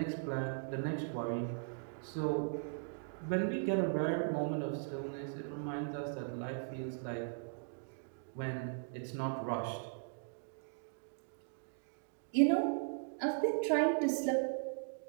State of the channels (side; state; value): left; silent; digital silence